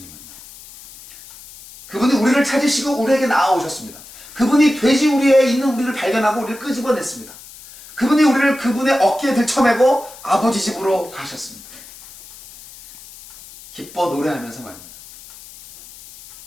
그분이 우리를 찾으시고 우리에게 나아오셨습니다. 그분이 돼지 우리에 있는 우리를 발견하고 우리를 끄집어냈습니다. 그분이 우리를 그분의 어깨에 들쳐매고 아버지 집으로 가셨습니다. 기뻐 노래하면서 말입니다.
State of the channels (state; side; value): noise; left; hiss, 19 dB below the sound